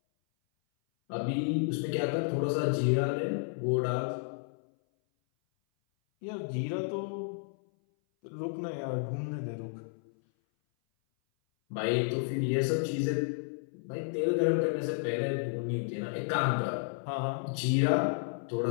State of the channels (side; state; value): right; silent; 57 dB below the other